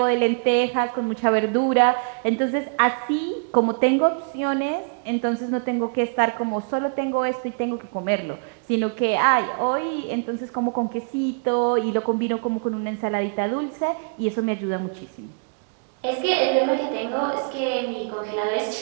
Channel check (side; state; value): left; quieter; 39.4 dB